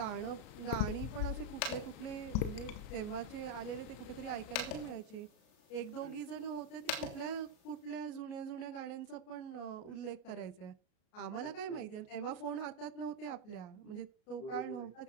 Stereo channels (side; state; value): right; late; 33 ms